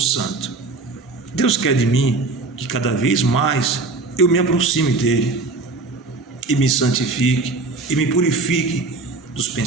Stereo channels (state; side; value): quieter; left; 3.6 dB